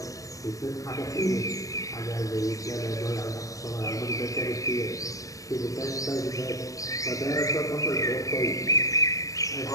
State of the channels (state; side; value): late; right; 0.16 ms